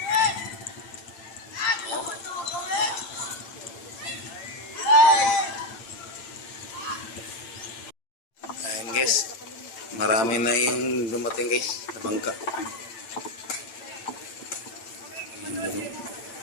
Ayan guys, marami na yung dumating guys, na bangka. Ayan dun, oh.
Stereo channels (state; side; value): late; right; 8.9 ms